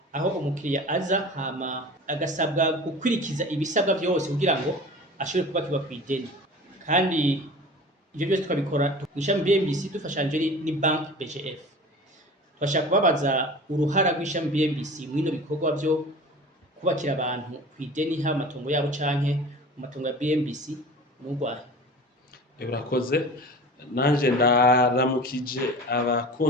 Aho umukiriya aza hama agasabwa gukwirikiza ibisabwa byose kugira ngo ashobore kubakirwa kw'ideni. Kandi ivyo byose twabikora ishami BMBC dufashanje ni bank BGF. Twashaka kubabaza uruhara rw'ishami BMBC mwino bikorwa byo kubakira abantu kw'ideni ha matongo yabo canke mu matongo ya BMBC n'urwaye. Urakoze. Nanje ndaramukije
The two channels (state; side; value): normal; both; correlation 0.38